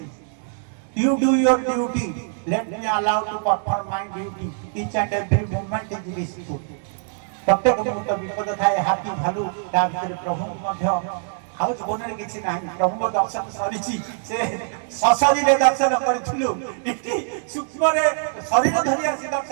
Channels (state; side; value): silent; left; digital silence